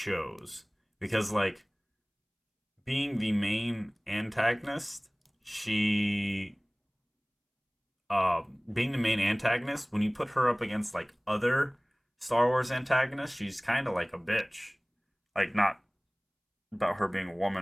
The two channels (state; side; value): identical; both; correlation 1.00